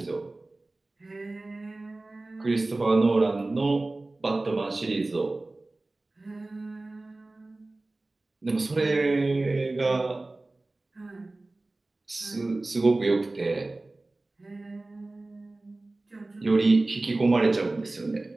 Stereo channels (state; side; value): quieter; left; 3.0 dB